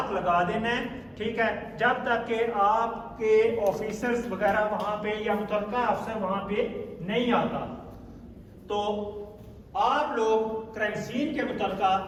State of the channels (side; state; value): both; identical; correlation 1.00